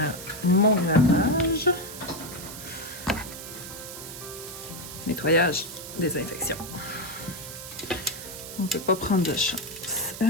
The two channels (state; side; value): noise; right; hiss, 11 dB below the sound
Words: mon gravage, nettoyage, désinfection. On ne peut pas prendre de chance.